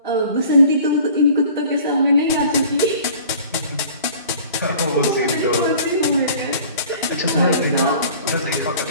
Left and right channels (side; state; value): both; inverted; correlation -0.48